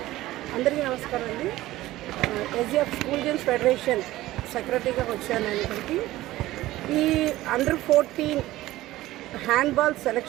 అందరికీ నమస్కారం అండి. ఎస్జిఎఫ్ స్కూల్ గేమ్స్ ఫెడరేషన్ సెక్రటరీగా వచ్చాను నేను ఇక్కడికి. ఈ అండర్-14 హ్యాండ్బాల్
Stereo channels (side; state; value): left; quieter; 16.5 dB